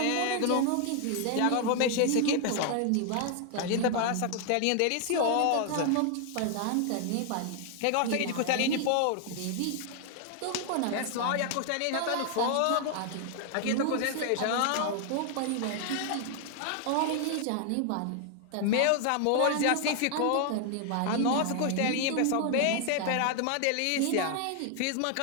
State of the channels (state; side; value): different; both; correlation 0.00